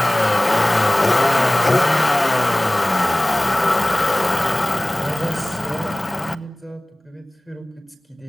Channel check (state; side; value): normal; both; correlation 0.98